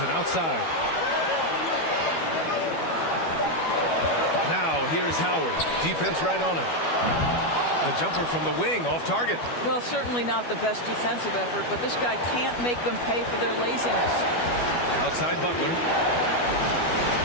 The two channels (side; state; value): right; late; 12 ms